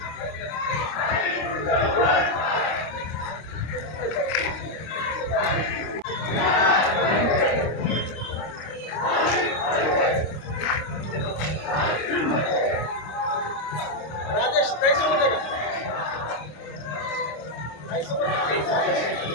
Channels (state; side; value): late; right; 26 ms